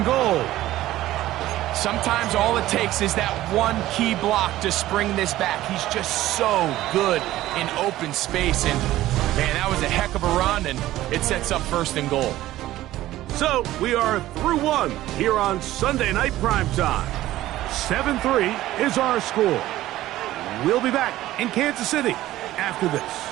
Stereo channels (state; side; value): quieter; left; 15.2 dB